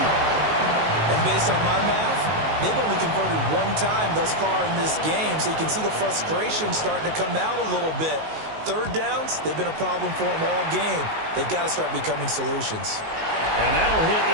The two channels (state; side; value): late; left; 19 ms